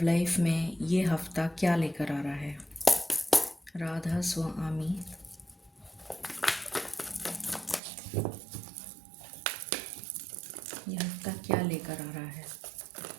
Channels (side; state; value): left; drops out; at 7.8 s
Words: लाइफ में ये हफ्ता क्या लेकर आ रहा है। राधा स्वामी, ये हफ्ता क्या लेकर आ रहा है।